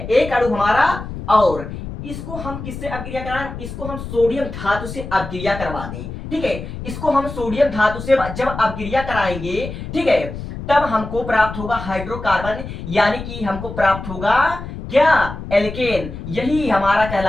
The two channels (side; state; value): left; noise; rumble, 9 dB below the sound